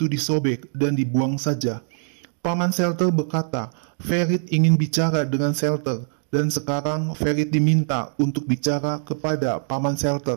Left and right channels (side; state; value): left; silent; digital silence